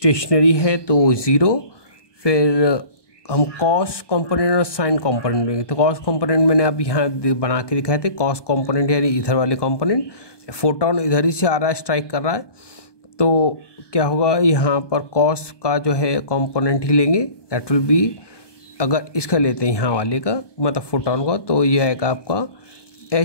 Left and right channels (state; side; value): late; right; 1.2 ms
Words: है तो ज़ीरो, फिर हम कॉस कंपोनेंट और साइन कंपोनेंट लेंगे। तो कॉस कंपोनेंट मैंने अब यहाँ बना के दिखाए थे, कॉस कंपोनेंट यानी इधर वाले कंपोनेंट, फोटोन इधर ही से आ रहा है, स्ट्राइक कर रहा है, तो क्या होगा, यहाँ पर कॉस का जो है कंपोनेंट ही लेंगे, दैट विल बी, अगर इसका लेते हैं यहाँ वाले का मतलब फोटोन का, तो ये आएगा आपका